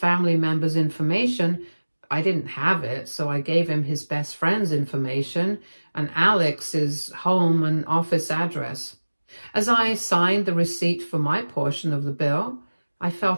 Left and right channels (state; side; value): inverted; both; correlation -1.00